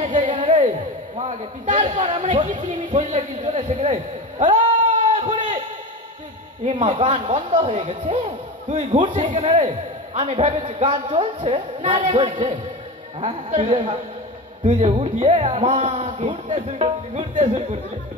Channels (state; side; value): normal; both; correlation 0.26